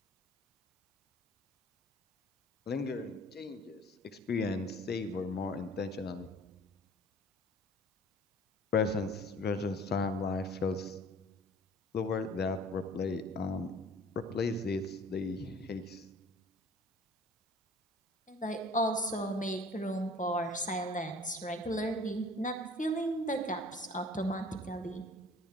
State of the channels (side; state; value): both; normal; correlation 0.50